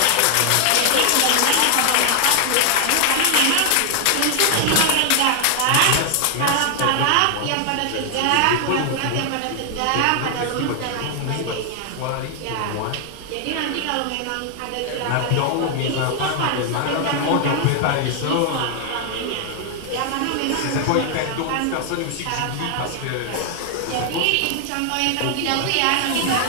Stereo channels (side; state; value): both; different; correlation 0.00